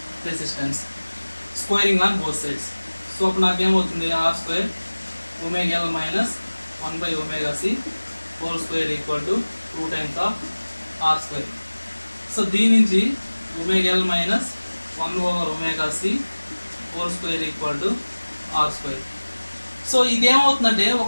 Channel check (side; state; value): both; inverted; correlation -1.00